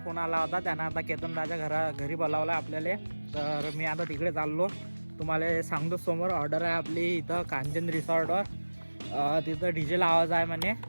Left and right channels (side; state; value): both; inverted; correlation -1.00